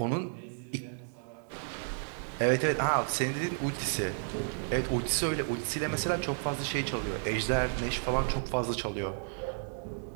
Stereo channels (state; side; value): silent; left; digital silence